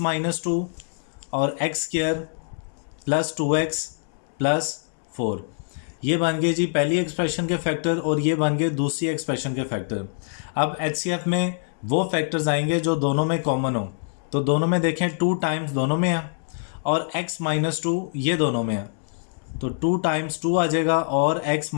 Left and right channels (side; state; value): right; silent; digital silence